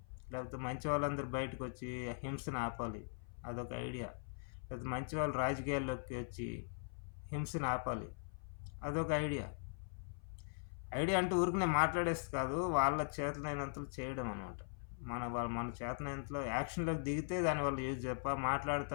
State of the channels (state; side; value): silent; right; 51 dB below the other